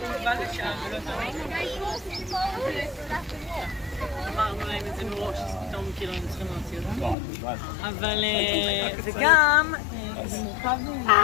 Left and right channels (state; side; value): drops out; right; at 7.2 s